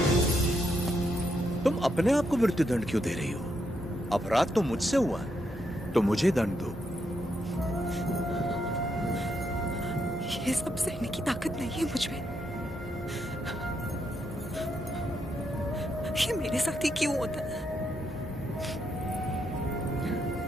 तुम अपने आप को मृत्युदंड क्यों दे रही हो? अपराध तो मुझसे हुआ है, तो मुझे दंड दो। ये सब सहने की ताकत नहीं है मुझ में। ये मेरे साथ ही क्यों होता है?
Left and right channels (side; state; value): both; normal; correlation 0.79